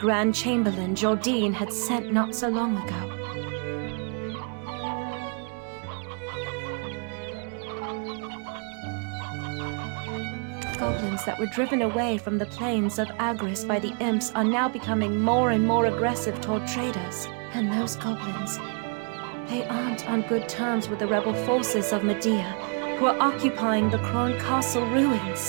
Chamberlain, Jordine, had sent not so long ago. Goblins that were driven away from the plains of Agris by the imps are now becoming more and more aggressive toward traders. And those goblins, they aren't on good terms with the rebel forces of Medea, who are occupying the Kron Castle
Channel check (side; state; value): left; quieter; 39.4 dB